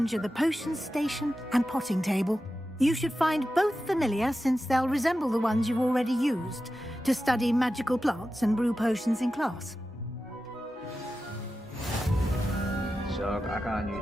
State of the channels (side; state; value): both; normal; correlation 0.92